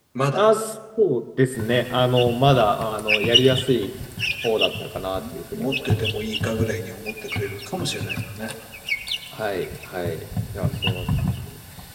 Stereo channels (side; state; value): both; identical; correlation 1.00